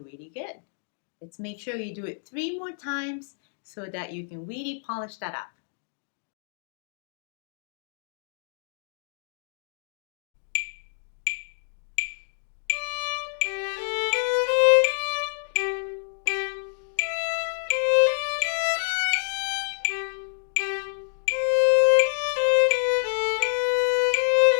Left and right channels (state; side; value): silent; right; digital silence